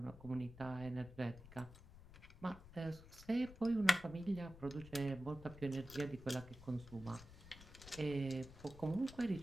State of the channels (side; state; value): left; noise; rumble, 17 dB below the sound